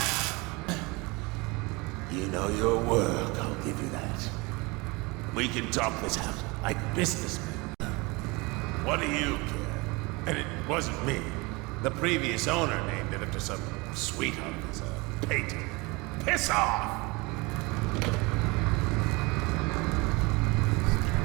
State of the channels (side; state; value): left; quieter; 25.6 dB